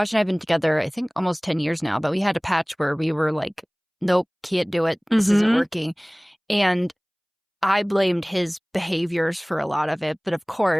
and I have been together, I think almost 10 years now, but we had a patch where we were like, nope, can't do it. This isn't working. And I blamed his behaviors for a lot of it. But of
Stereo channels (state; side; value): identical; both; correlation 1.00